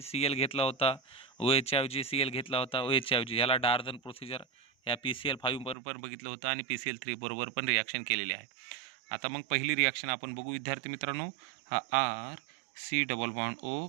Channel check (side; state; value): left; drops out; at 5.8 s